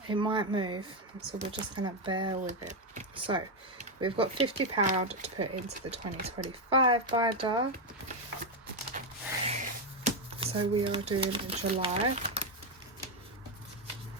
It might move, so we're just gonna bear with it. So we've got £50 to put into the 2025 binder. So we are doing July.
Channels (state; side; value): normal; both; correlation 0.06